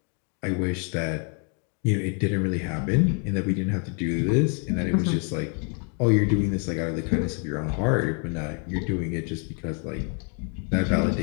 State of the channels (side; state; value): right; quieter; 39.1 dB